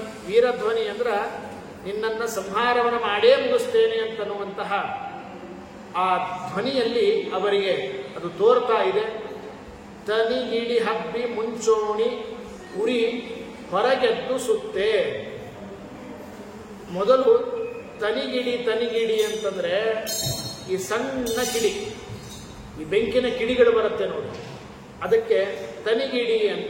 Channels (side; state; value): both; identical; correlation 1.00